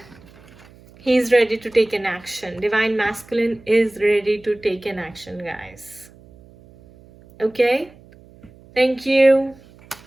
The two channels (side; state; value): right; noise; hum, 25 dB below the sound